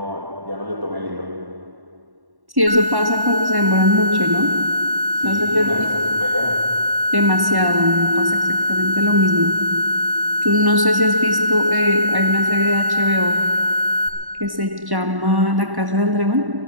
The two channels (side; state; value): left; late; 1.1 ms